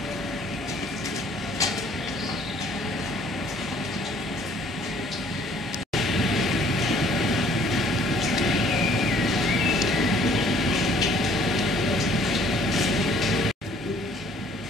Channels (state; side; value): normal; both; correlation 0.58